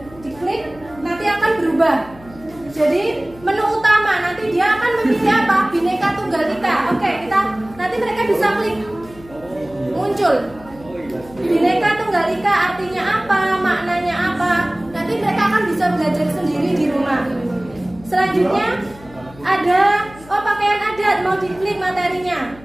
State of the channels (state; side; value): noise; left; hum, 21 dB below the sound